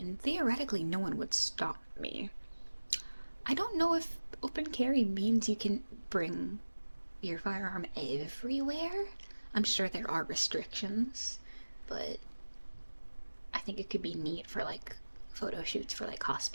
theoretically no one would stop me. I don't know if open carry means you can bring your firearm everywhere. I'm sure there are restrictions, but I think it could be neat for like photo shoots for like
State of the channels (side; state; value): both; inverted; correlation -1.00